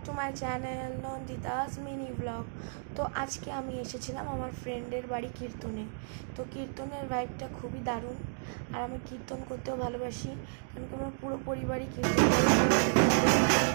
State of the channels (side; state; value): left; silent; digital silence